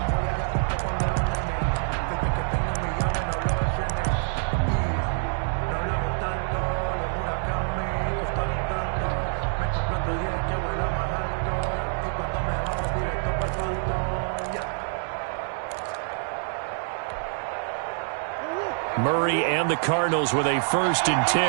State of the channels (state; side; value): silent; left; 61 dB below the other